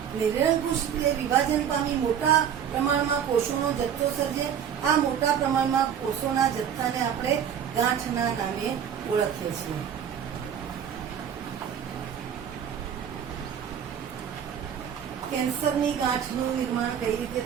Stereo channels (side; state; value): left; quieter; 8.6 dB